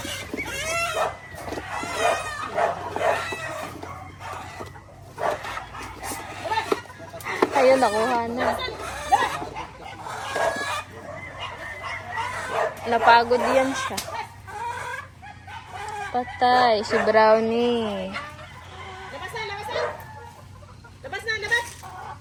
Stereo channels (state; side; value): identical; both; correlation 1.00